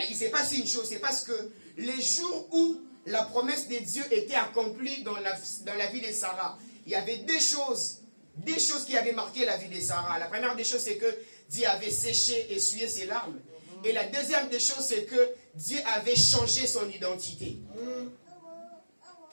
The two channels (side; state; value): both; inverted; correlation -1.00